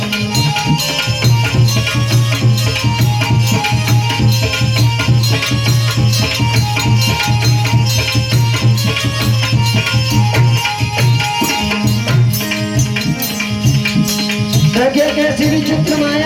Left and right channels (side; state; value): both; identical; correlation 1.00